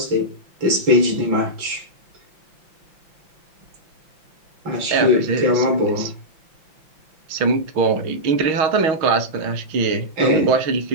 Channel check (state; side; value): late; left; 5.8 ms